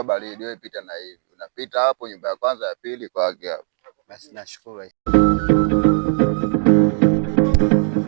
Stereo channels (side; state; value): left; silent; 55 dB below the other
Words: baridi, wewe pita na hivi, unapita hapo nyumba ya kwanza ya pili kwake hapo. Basi nashukuru.